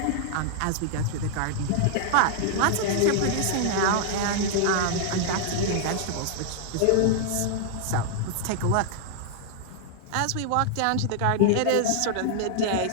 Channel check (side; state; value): both; different; correlation -0.01